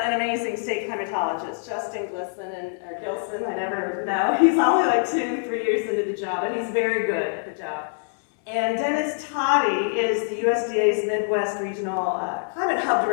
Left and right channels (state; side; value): silent; right; digital silence